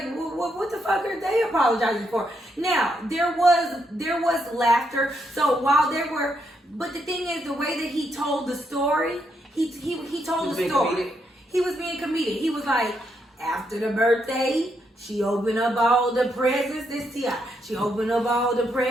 what the fuck are they apologizing for? Now, there was laughter. So while there were, but the thing is, the way that he told the story, he told the story. Comedic. He was being comedic. He was like, after the birthday, she opened up all the presents. This T.I. She opened up all the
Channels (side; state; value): both; normal; correlation 0.78